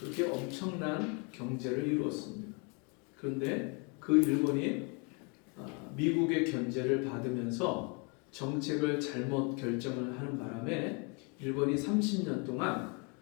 엄청난 경제를 이루었습니다. 그런데 그 일본이 미국의 견제를 받으면서 정책을 잘못 결정을 하는 바람에 일본이 30년 동안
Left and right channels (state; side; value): quieter; right; 33.8 dB